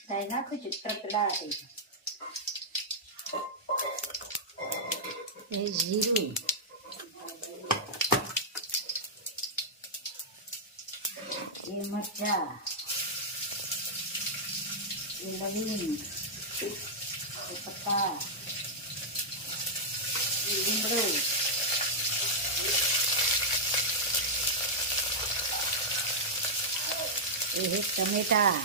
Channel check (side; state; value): both; normal; correlation -0.08